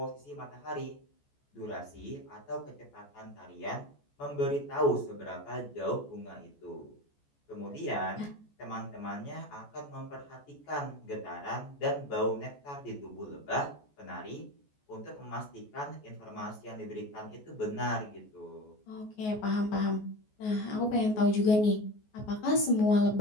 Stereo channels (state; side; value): late; right; 14 ms